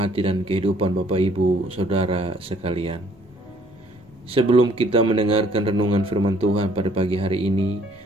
dan kehidupan Bapak Ibu, Saudara sekalian. Sebelum kita mendengarkan renungan firman Tuhan pada pagi hari ini,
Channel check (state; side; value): normal; both; correlation 0.61